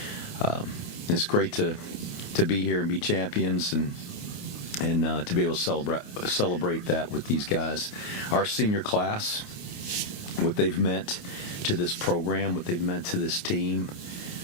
it's great to be here and be champions and to be able to celebrate that with these guys. Our senior class, what they've meant to this program, what they've meant to this team,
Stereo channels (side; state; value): right; late; 29 ms